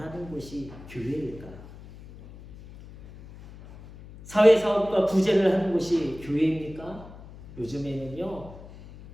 곳이 교회일까? 사회사업과 구제를 하는 곳이 교회입니까? 요즘에는요,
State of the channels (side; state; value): left; noise; hum, 17 dB below the sound